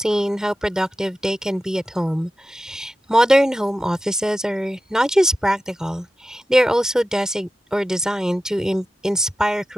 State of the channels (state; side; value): normal; both; correlation 0.93